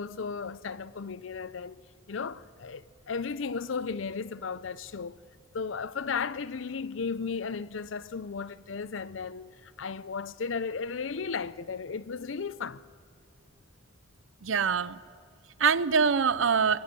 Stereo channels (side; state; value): both; normal; correlation -0.13